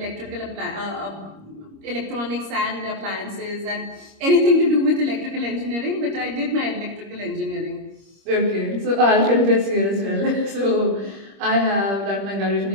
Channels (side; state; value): left; late; 25 ms